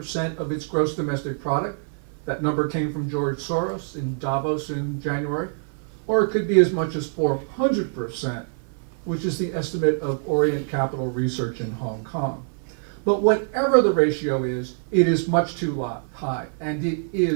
of its gross domestic product. That number came from George Soros in Davos in January. Or it could be as much as 400%, which is the estimate of Orient Capital Research in Hong Kong. But whatever the ratio is, it is much too high, and it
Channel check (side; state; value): left; silent; 56 dB below the other